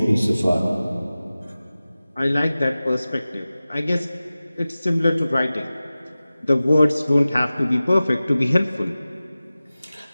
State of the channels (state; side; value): inverted; both; correlation -0.96